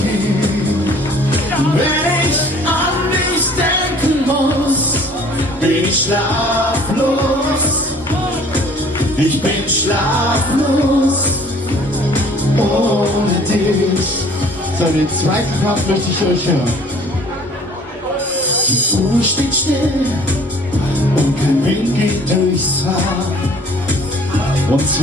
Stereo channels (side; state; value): both; normal; correlation 0.53